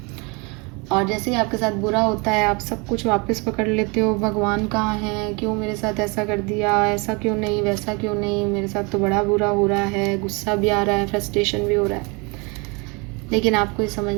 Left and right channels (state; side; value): quieter; left; 29.4 dB